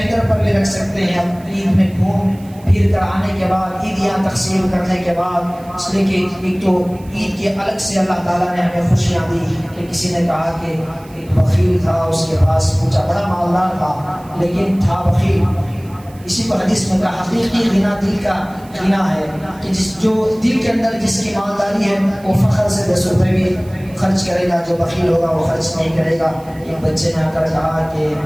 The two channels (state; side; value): noise; right; hiss, 26 dB below the sound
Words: پر بھی رکھ سکتے ہیں. اب عید میں گھوم پھر کر آنے کے بعد، عیدیاں تقسیم کرنے کے بعد، اس لیے کہ ایک تو عید کے الگ سے اللہ تعالیٰ نے ہمیں خوشیاں دی کہ کسی نے کہا کہ ایک بخیل تھا، اس کے پاس پوچھا، بڑا مالدار تھا لیکن تھا بخیل. اسی کو حدیث میں کہا حقیقی غنا دل کا غنا ہے کہ جو دل کے اندر جس کی مالداری ہے وہ فخر سے 10 روپے بھی خرچ کرے گا. جو بخیل ہوگا وہ خرچ نہیں کرے گا. ایک بچے نے آ کر کہا کہ